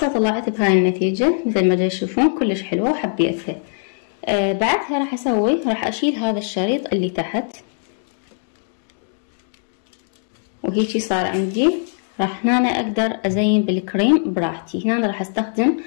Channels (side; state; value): right; silent; digital silence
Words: طلعت بهاي النتيجة مثل ما تشوفون كلش حلوة وحبيتها. بعدها راح اشيل هذا الشريط اللي تحت، وهيجي صار عندي. راح هنا اقدر ازين بالكريم براحتي. هنا راح استخدم